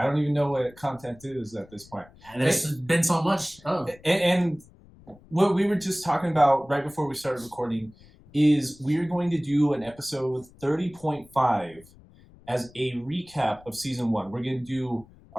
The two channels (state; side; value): noise; left; rumble, 25 dB below the sound